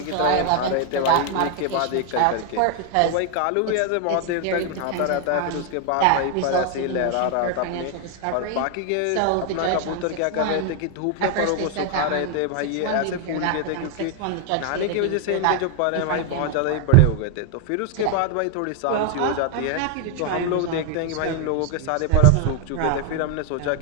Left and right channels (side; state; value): both; different; correlation 0.00